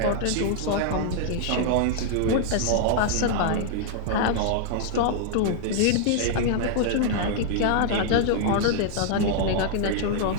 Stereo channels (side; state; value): both; different; correlation -0.01